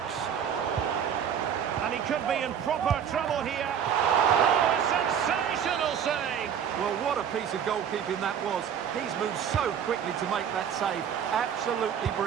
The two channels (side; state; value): left; quieter; 8.4 dB